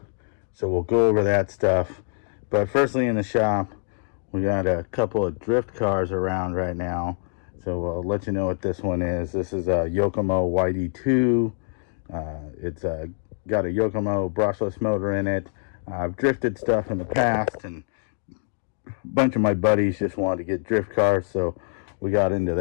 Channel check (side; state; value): right; silent; digital silence